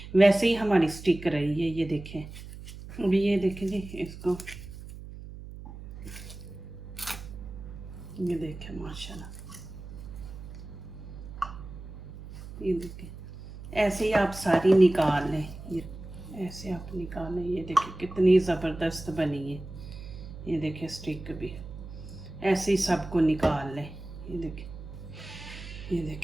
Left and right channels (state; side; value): noise; right; hum, 13 dB below the sound